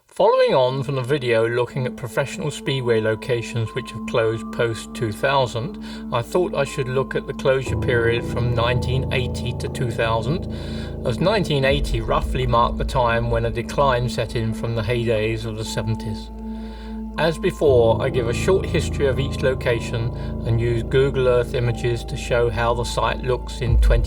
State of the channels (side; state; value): both; identical; correlation 1.00